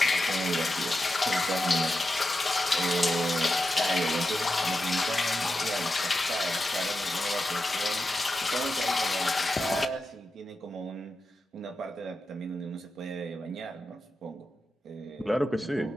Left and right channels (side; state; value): both; normal; correlation 0.89